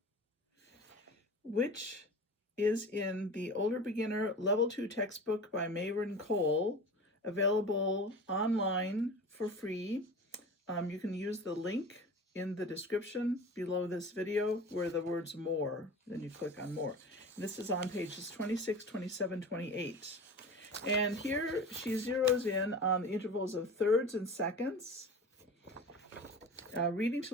which is in the Older Beginner Level 2 textbook by Mayron, available online for free. You can use the link in the description below this video where the words more, then you click on more. And this is on pages 26, 27, 28. And here she zeroes in on the intervals of thirds and seconds. Learning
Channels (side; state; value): both; normal; correlation 0.35